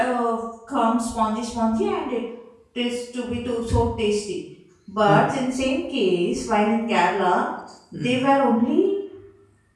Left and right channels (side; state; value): both; identical; correlation 1.00